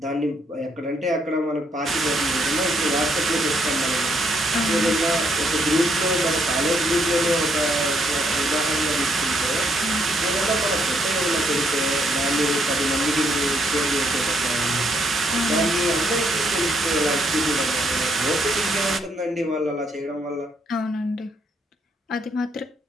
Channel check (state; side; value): normal; both; correlation 0.73